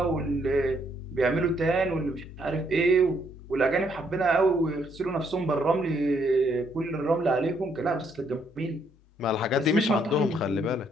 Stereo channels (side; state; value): both; normal; correlation 0.71